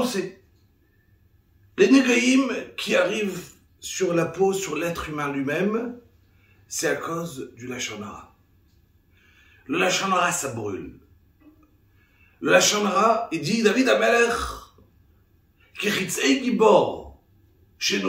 sait, les négaïm qui arrivent sur la peau, sur l'être humain lui-même, c'est à cause du lashon hara. Le lashon hara, ça brûle. Le lashon hara, il dit David Amelech, ki chitzei gibor,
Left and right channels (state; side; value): identical; both; correlation 1.00